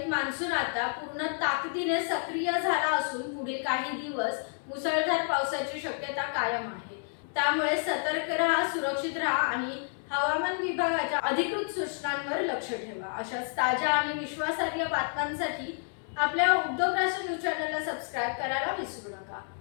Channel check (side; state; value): right; silent; 58 dB below the other